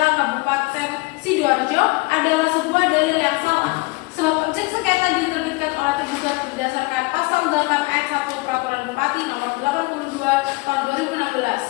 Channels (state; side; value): quieter; right; 25.4 dB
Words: Kabupaten Sidoarjo adalah sebuah dalil yang salah. Sebab objek sengketa diterbitkan oleh tergugat berdasarkan pasal 8 ayat 1 Peraturan Bupati nomor 82 tahun